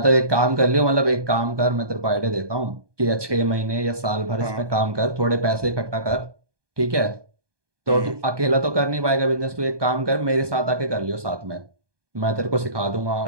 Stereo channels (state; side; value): late; left; 1.2 ms